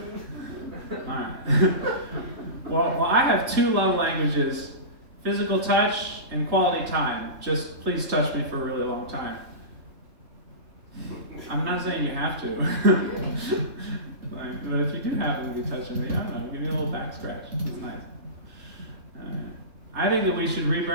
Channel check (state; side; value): late; left; 3.3 ms